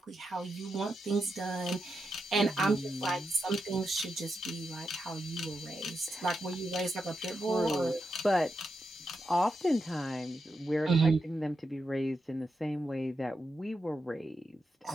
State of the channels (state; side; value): normal; both; correlation 0.86